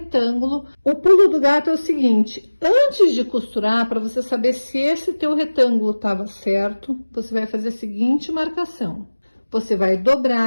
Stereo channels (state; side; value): inverted; both; correlation -1.00